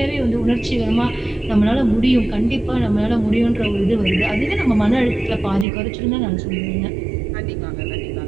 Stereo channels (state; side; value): drops out; left; at 5.7 s